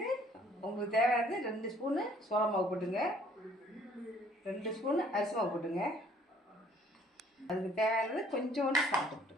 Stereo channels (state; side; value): normal; both; correlation 0.59